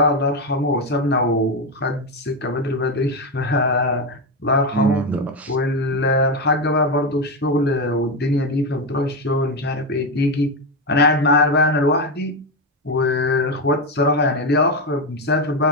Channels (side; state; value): both; normal; correlation 0.11